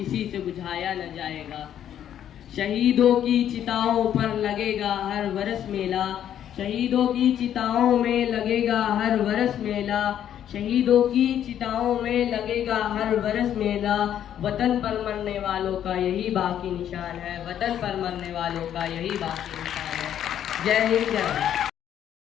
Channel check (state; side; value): quieter; right; 10.2 dB